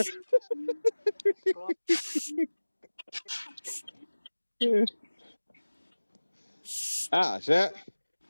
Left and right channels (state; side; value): inverted; both; correlation -1.00